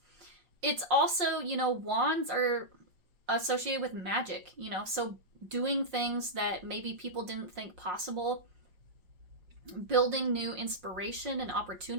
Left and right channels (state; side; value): late; left; 5.5 ms